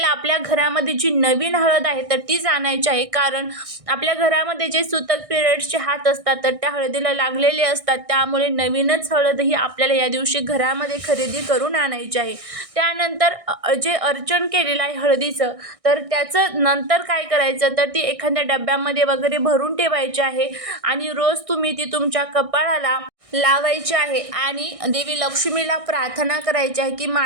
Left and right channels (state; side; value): late; left; 1.6 ms